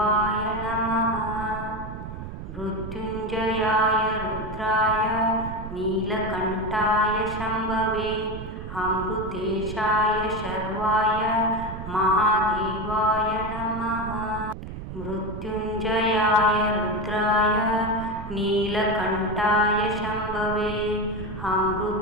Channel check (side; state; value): right; noise; rumble, 9 dB below the sound